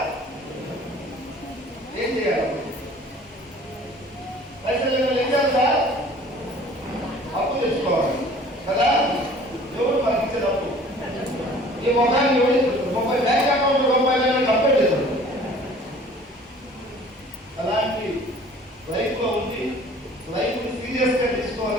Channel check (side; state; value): both; normal; correlation 0.50